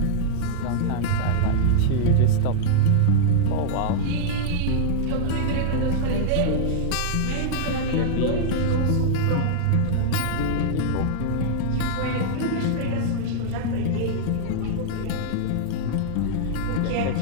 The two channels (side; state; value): both; different; correlation -0.01